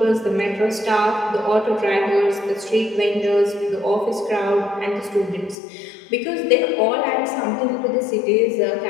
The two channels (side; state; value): right; drops out; at 5.6 s